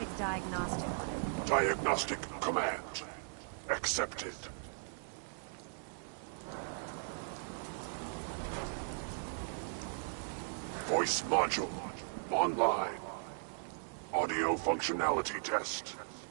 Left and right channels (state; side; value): silent; left; digital silence